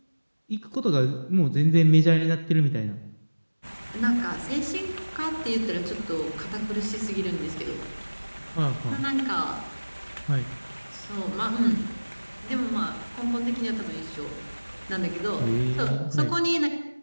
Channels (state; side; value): inverted; both; correlation -1.00